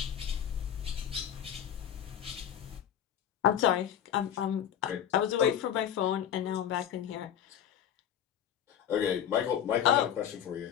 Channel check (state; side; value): quieter; right; 9.8 dB